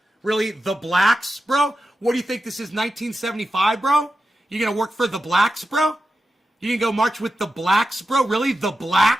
Really? The blacks, bro? What do you think this is, 1975, bro? You gonna work for the blacks, bro? You gonna go march with the blacks, bro? Really? The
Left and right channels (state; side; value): normal; both; correlation 0.91